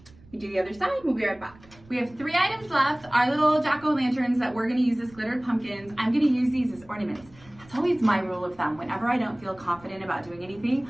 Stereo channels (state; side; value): noise; right; rumble, 25 dB below the sound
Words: We do the other side, we'll be right back. We have 3 items left, our little jack-o'-lanterns that we're gonna use as glittered pumpkins. I'm gonna use these as ornaments. That's always my rule of thumb. Whenever I don't feel confident about doing anything,